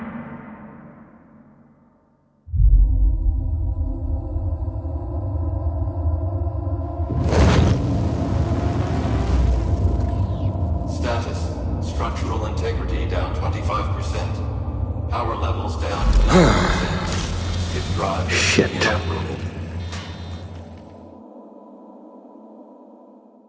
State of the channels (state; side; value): identical; both; correlation 1.00